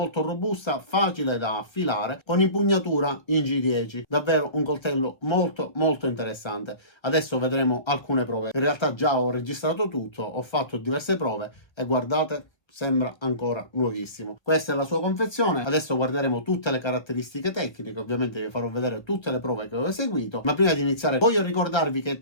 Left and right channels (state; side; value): late; right; 1.5 ms